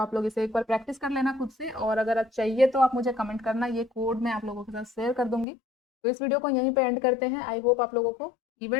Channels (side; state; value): right; drops out; at 5.5 s